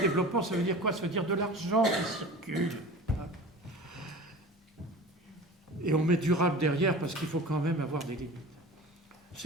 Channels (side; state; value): both; normal; correlation 0.37